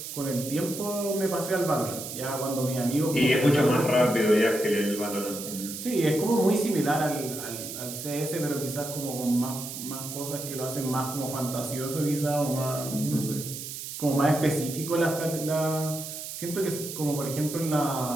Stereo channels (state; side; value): noise; right; hiss, 8 dB below the sound